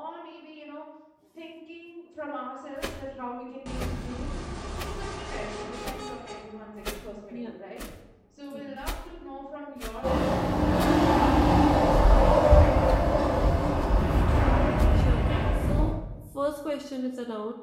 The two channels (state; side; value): identical; both; correlation 1.00